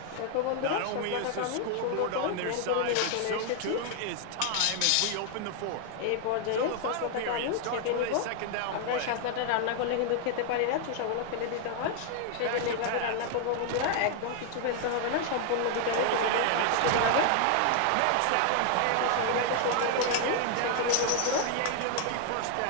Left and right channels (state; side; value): different; both; correlation 0.00